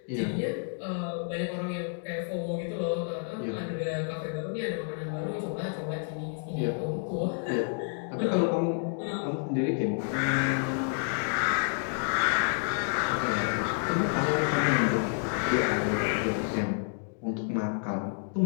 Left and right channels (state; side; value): silent; right; 58 dB below the other